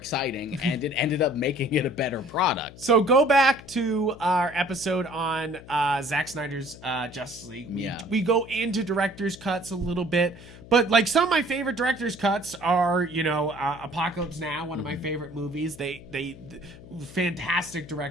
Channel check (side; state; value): left; noise; hum, 18 dB below the sound